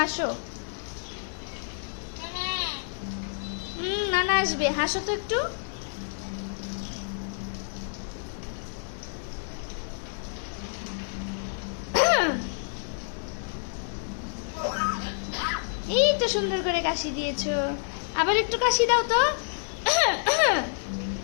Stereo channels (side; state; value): right; silent; 59 dB below the other